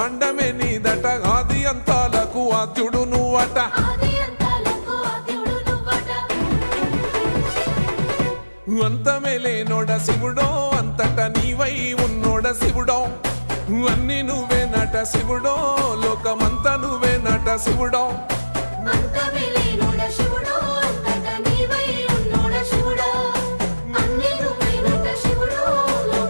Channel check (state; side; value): inverted; both; correlation -1.00